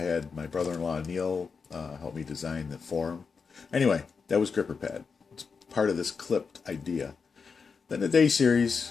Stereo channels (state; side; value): quieter; right; 5.4 dB